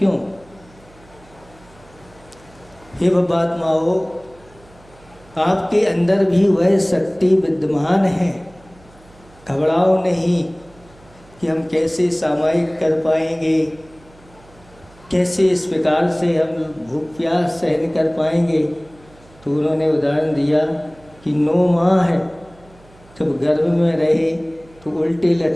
हे भवात्माओ, आपके अंदर भी वह शक्ति विद्यमान है, घबराओ नहीं कि हम कैसे सामायिक कर पाएंगे, कैसे इस प्रकार से हम भूख प्यास सहन कर पाएंगे। तो उन्होंने उदाहरण दिया कि 9 माह है, जब गर्भ में रहे तो उल्टे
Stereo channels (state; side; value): noise; right; hum, 26 dB below the sound